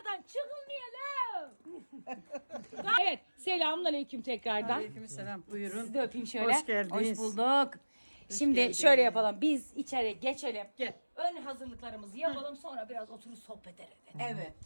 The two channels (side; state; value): both; inverted; correlation -1.00